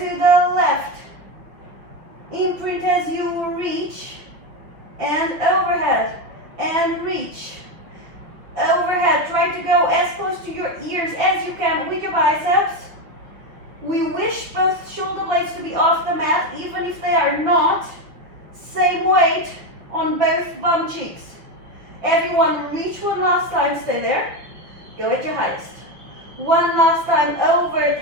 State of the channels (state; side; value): late; left; 6.1 ms